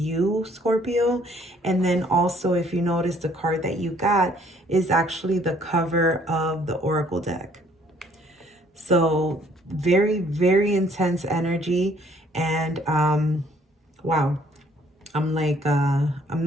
Scorpio. And then also, if you notice, the card that you got is actually the cover of the Oracle deck. So very, very intense energy. And wow, I'm like, I'm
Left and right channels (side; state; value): both; normal; correlation 0.62